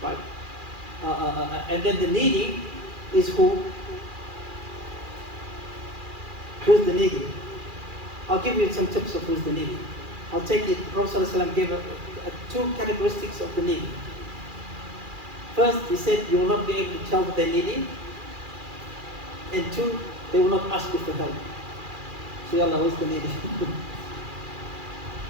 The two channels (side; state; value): left; late; 2.4 ms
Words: right? And then the needy is who? Who's the needy? I'll give you some tips of who's the needy. I'll take it. Prophet ﷺ gave two characteristics of the needy. First, he said you will not be able to tell that they're needy. And two, they will not ask you for help. So Allah is the needy.